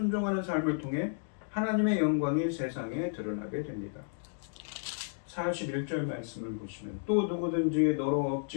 삶을 통해 하나님의 영광이 세상에 드러나게 됩니다. 41절 말씀을 보시면 또 누구든지 너로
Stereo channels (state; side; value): silent; right; digital silence